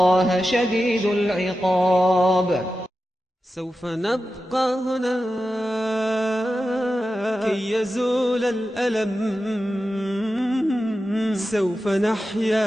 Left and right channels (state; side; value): normal; both; correlation 0.92